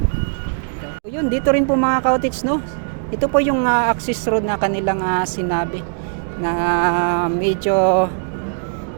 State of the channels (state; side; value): silent; left; digital silence